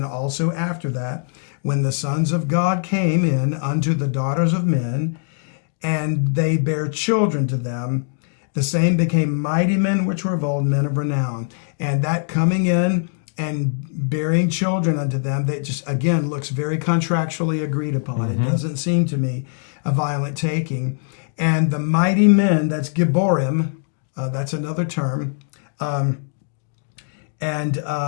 also after that, when the sons of God came in unto the daughters of men, and they bare children to them, the same became mighty men which were of old, men of renown. And that coming in and bearing children unto them, that just, again, looks very contractually agreed upon. It doesn't seem to me a violent taking. And the mighty men, that's Gibborim, that's another term.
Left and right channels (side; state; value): right; silent; digital silence